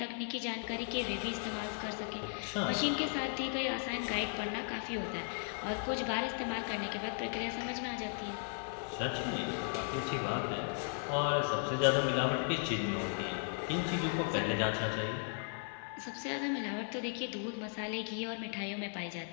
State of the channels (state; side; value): silent; right; 53 dB below the other